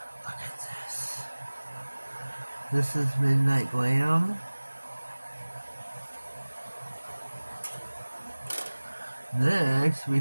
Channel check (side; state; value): both; inverted; correlation -1.00